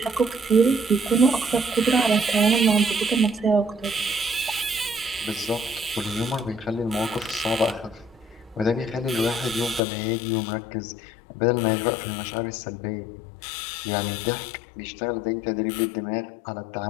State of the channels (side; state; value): right; drops out; at 9.8 s